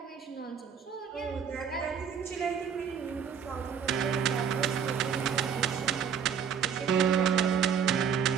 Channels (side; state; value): left; quieter; 7.3 dB